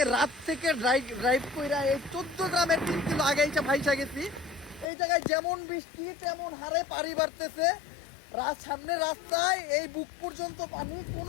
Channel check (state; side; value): drops out; right; at 4.9 s